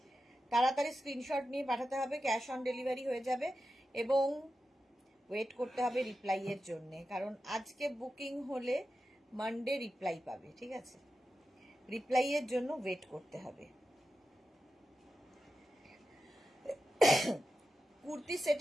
তাড়াতাড়ি স্ক্রিনশট নিয়ে পাঠাতে হবে, ক্যাশ অন ডেলিভারি হয়ে যাবে, এবং ওয়েট করতে হবে রিপ্লাইয়ের জন্য, কারণ আজকে বুকিং হলে মানডে রিপ্লাই পাবে, ঠিক আছে? রিপ্লাইয়ের জন্য ওয়েট করতে হবে। কুর্তি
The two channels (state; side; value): normal; both; correlation 0.91